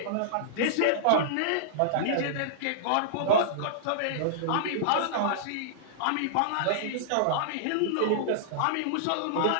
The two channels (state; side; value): different; both; correlation -0.02